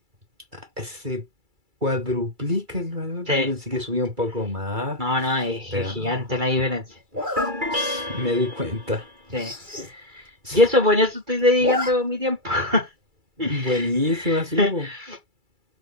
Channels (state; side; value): late; left; 2.3 ms